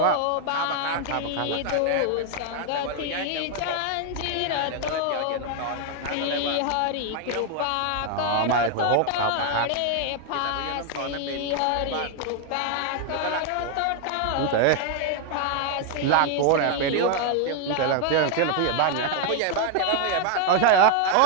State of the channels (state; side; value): different; both; correlation 0.00